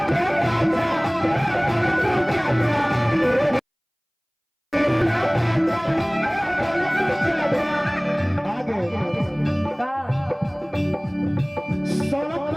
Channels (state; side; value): identical; both; correlation 1.00